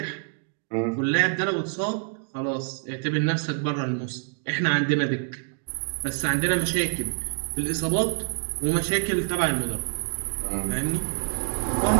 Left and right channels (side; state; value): left; silent; 61 dB below the other